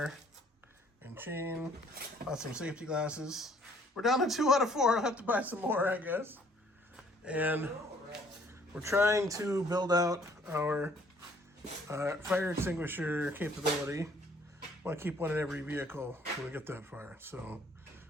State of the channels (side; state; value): both; normal; correlation 0.60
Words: and chain, bought some safety glasses. We're down to 2 out of 4. I'll have to buy some more, I guess. And we're trying to build out our fire extinguisher capability. Want to keep one in every vehicle when we get that far. So